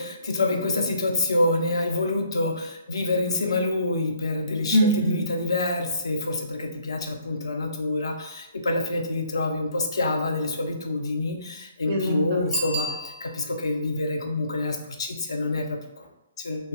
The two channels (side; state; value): both; inverted; correlation -0.66